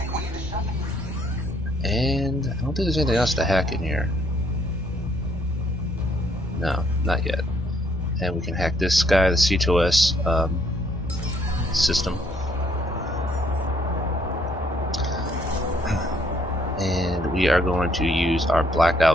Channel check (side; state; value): both; normal; correlation 0.67